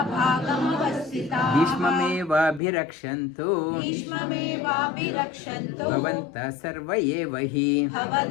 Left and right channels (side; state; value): right; drops out; at 2.6 s